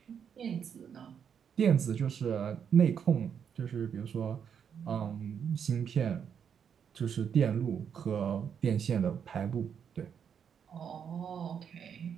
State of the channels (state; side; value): quieter; left; 7.6 dB